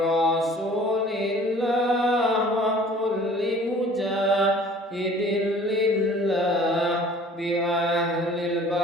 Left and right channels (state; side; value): normal; both; correlation 0.50